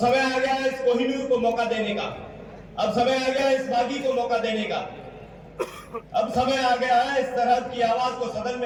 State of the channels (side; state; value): both; identical; correlation 1.00